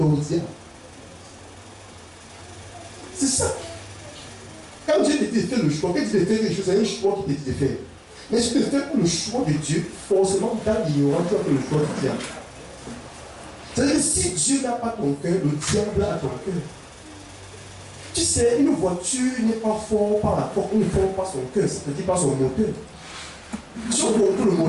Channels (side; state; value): both; identical; correlation 1.00